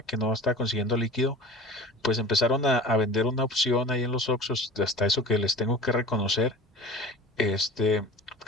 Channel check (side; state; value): both; normal; correlation 0.37